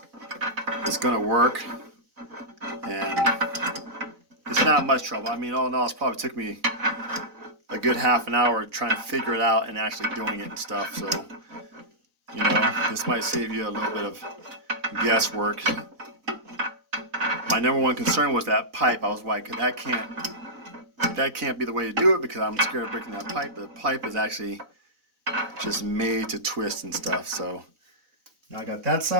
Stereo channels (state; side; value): late; left; 4.0 ms